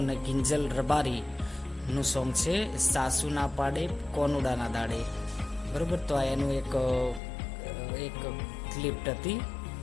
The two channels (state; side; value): drops out; right; at 7.2 s